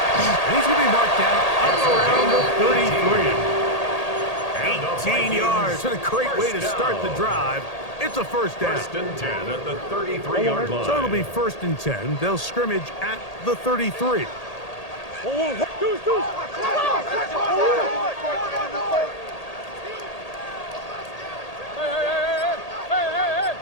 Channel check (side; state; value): right; late; 1.8 ms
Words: And he's going to be marked down up around the 33. 18 yards. What a great way to start the drive. It's a 1st down. 1st and 10 at the 33-yard line. So it'll be 1st and 10. They'll scrimmage at the 33.